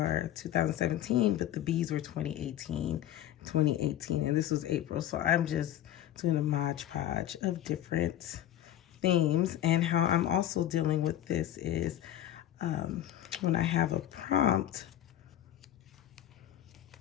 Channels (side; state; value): right; quieter; 12.1 dB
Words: 2017, but the bees were 2018, and this was April. So I'm just doing a Mod Podge of different themes. And how I'm also dealing with this is when I have a prompt,